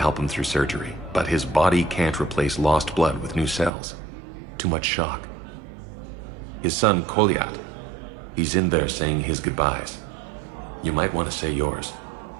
him through surgery, but his body can't replace lost blood with new cells. Too much shock. His son, Kolyat, he's in there saying his goodbyes. You might want to say yours.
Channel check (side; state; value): left; drops out; at 3.7 s